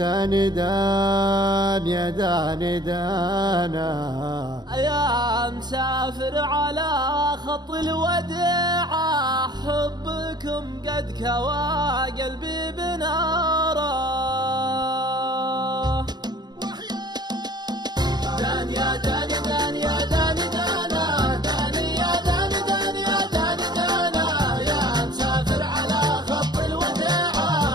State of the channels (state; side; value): late; left; 0.20 ms